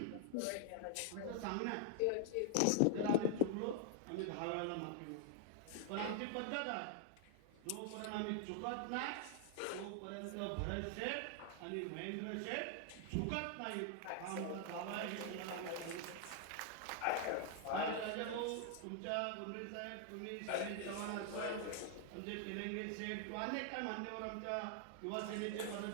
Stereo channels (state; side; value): different; both; correlation 0.00